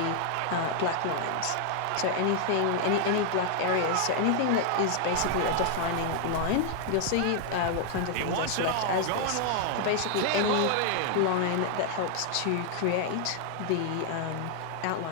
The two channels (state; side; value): different; both; correlation 0.00